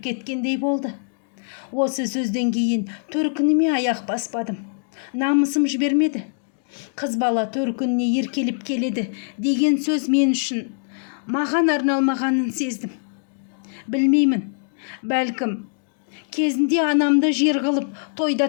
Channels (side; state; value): right; silent; digital silence